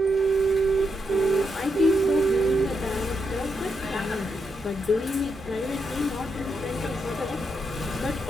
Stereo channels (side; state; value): both; normal; correlation 0.82